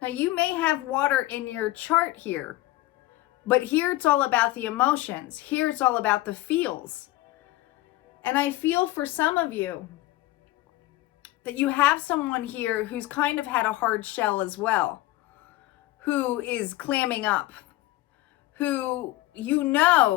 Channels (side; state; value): right; quieter; 17.5 dB